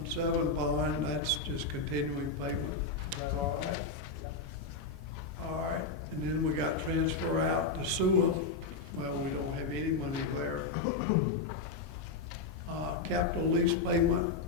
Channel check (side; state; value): right; quieter; 3.9 dB